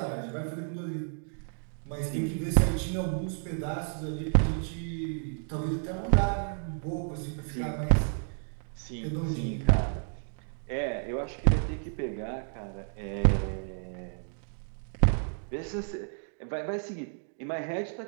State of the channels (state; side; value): silent; left; 57 dB below the other